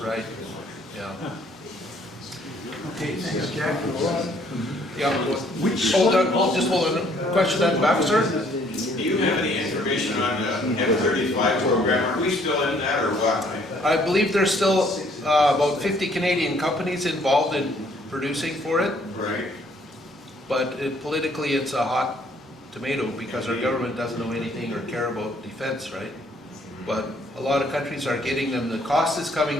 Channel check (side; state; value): both; normal; correlation 0.63